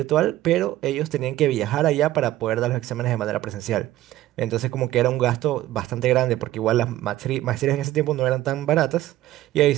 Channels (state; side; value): quieter; left; 15.0 dB